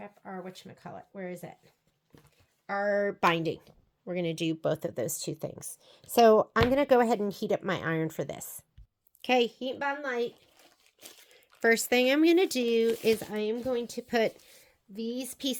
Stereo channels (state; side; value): identical; both; correlation 1.00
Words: whatchamacallit, where is it? Our binding. We're going to do both of those 2 things. So I'm going to go ahead and heat up my iron for this. Okay, heat bond light. First thing I'm going to do is I am going to put these